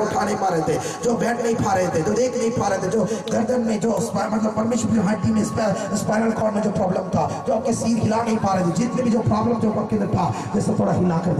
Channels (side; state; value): both; identical; correlation 1.00